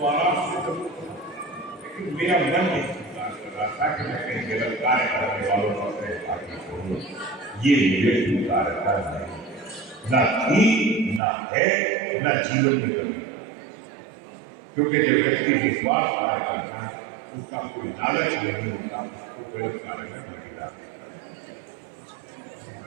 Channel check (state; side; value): drops out; left; at 11.2 s